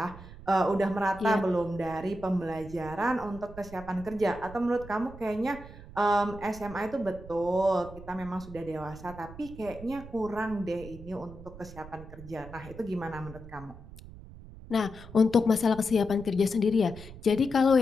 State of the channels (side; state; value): right; noise; rumble, 16 dB below the sound